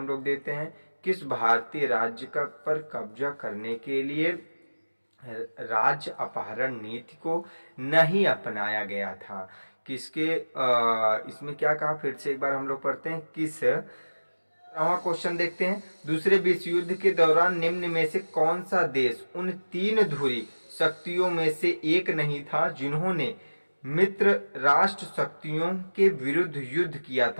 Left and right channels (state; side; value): inverted; both; correlation -1.00